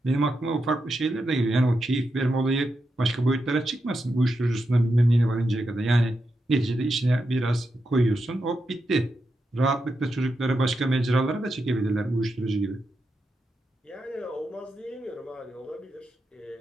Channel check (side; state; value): both; normal; correlation 0.86